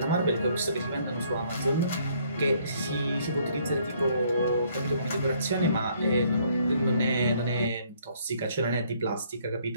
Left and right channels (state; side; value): inverted; both; correlation -0.65